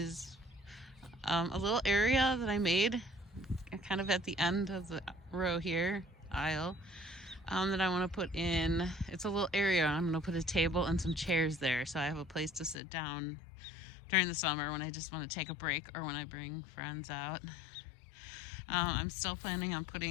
a little area that I made kind of at the end of the row here, aisle, that I want to put in. It's a little area. I'm going to put a table and some chairs there so I have a place to sit down during the summer when I just want to take a break or when I bring friends out. I'm still planning on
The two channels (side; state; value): right; drops out; at 12.8 s